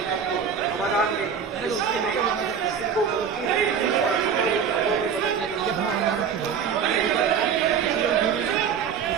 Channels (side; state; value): left; quieter; 7.0 dB